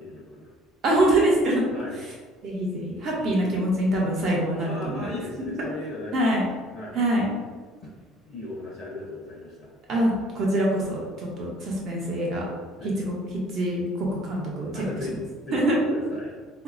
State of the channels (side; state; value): both; normal; correlation 0.55